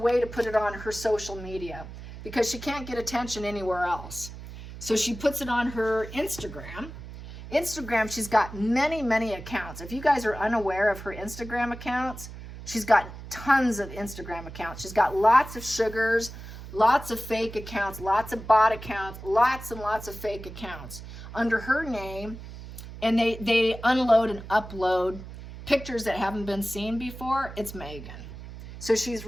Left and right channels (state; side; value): noise; right; hum, 13 dB below the sound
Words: to put it on her social media because she can't get attention anywhere else. So she puts it on her Instagram. Instagram, she's got many, many accounts. If you guys are unaware of her Instagram accounts, she's got tons of Instagram accounts. She's got lots of sugars, lots of fake accounts, lots of bot accounts, lots and lots of fake accounts under her name. And they unload and upload pictures that haven't been seen before. It's Megan. So she's